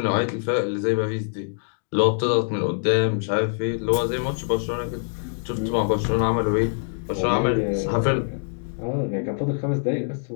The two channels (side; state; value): right; silent; digital silence